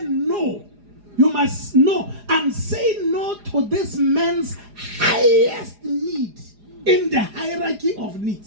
no, you must know and say no to this man's highest need in the hierarchy of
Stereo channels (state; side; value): late; left; 4.9 ms